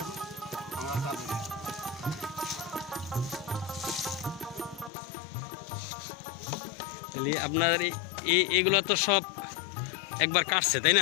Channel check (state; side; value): drops out; right; at 4.9 s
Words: আমার কাজ। তাহলে আপনার এগুলো তো সব একবার কাটছে তাই